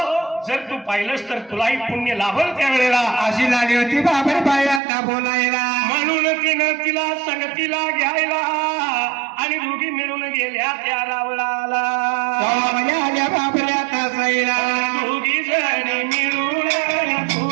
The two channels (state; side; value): drops out; left; at 4.8 s